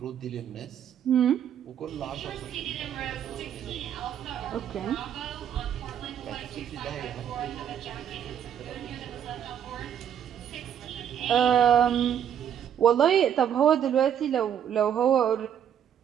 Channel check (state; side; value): quieter; left; 9.3 dB